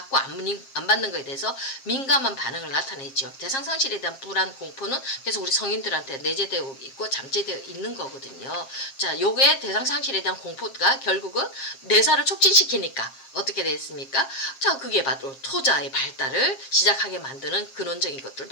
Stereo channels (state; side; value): late; right; 7.5 ms